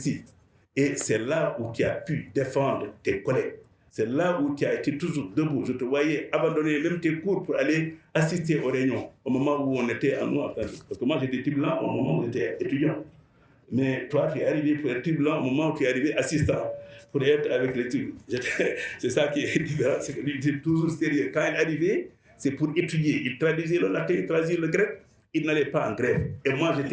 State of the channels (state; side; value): identical; both; correlation 1.00